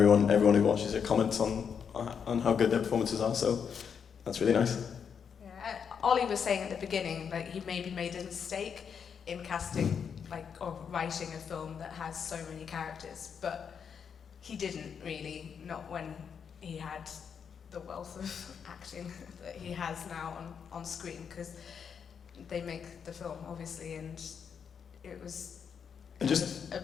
who watches it comments on how good their performances are. So that's really nice. Yeah, Ollie was saying at the beginning, like, he maybe made a mistake in casting, like, or writing a film that has so many characters, but he didn't really, not when he had the wealth of acting that he has now on screen, because they make the film, obviously, and it was And just a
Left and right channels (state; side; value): quieter; right; 7.0 dB